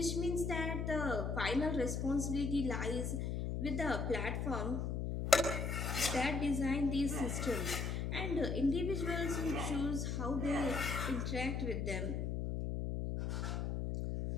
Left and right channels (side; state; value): left; noise; hum, 1 dB below the sound